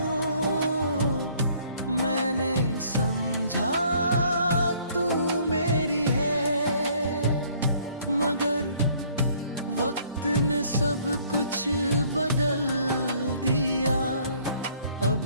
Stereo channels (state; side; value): inverted; both; correlation -0.60